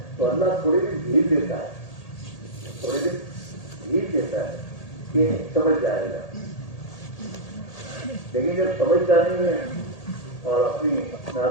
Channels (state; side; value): late; right; 1.8 ms